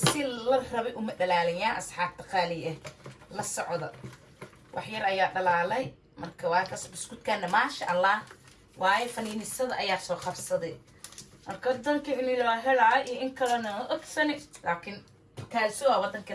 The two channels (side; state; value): both; identical; correlation 1.00